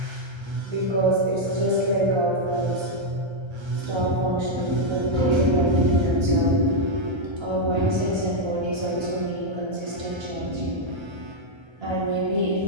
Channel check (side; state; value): left; late; 1.3 ms